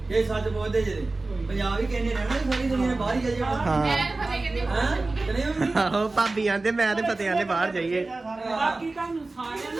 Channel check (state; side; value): quieter; left; 3.3 dB